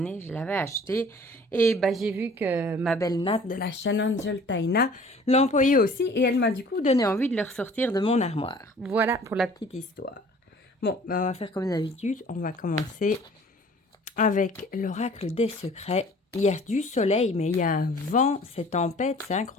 Je l'avais acheté. Et bah, j'ai vu que ma belle Nat de la chaîne Angel Taina l'employait aussi. Et elle m'a du coup donné envie de le ressortir de mon armoire. Voilà pour la petite histoire. Bon, bah, on va faire comme d'habitude. On va commencer avec l'oracle des secrets. Il y a du soleil, mais il y a un vent. C'est tempête, c'est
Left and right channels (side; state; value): both; normal; correlation 0.50